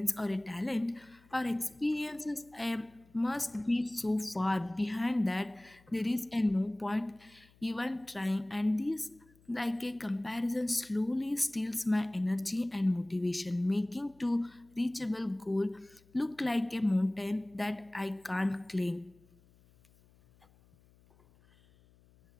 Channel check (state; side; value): noise; left; hum, 29 dB below the sound